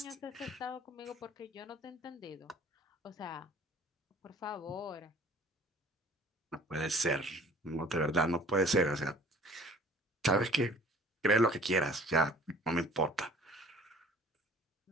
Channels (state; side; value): normal; both; correlation 0.51